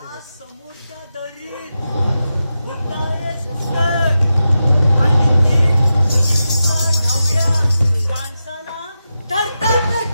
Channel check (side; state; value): both; inverted; correlation -0.90